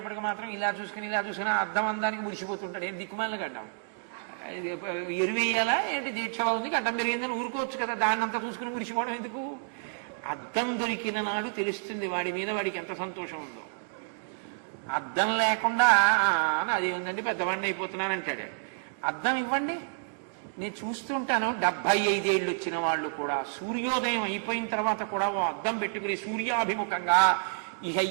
మాత్రం ఇలా చూసుకుని అద్దం అందానికి మురిసిపోతుంటాడు. ఏంటి దిక్కుమాలిన గడ్డం ఎరువేయాలా ఏంటి? దీక్షలో ఉంది గడ్డం పెరిగిందని ఊరుకోవచ్చు కదా, దాన్ని అంతా చూసుకుని మురిసిపోవడం ఎందుకు? అద్దం దొరికిన నాడు తెలుస్తుంది వాడి మీద వాడికి ఎంత సంతోషం ఉందో. అద్దం లేకుండా అది ఉందండి పెద్దవాడిని అయిపోతున్నాను అంటాడు. అద్దం ఇవ్వండి, నేను చూస్తుంటాను 75 ఏళ్ళు వచ్చిన వాళ్ళు కూడా సూర్యోదయం అయిపోయిన తర్వాత కూడా ఓ అద్దం పెట్టుకుని సూర్యాభిముఖంగా ఇక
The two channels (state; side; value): silent; left; digital silence